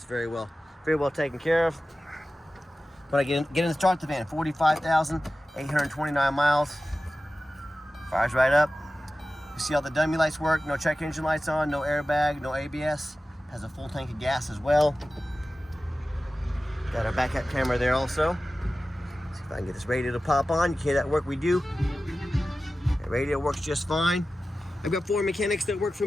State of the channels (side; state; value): both; normal; correlation 0.95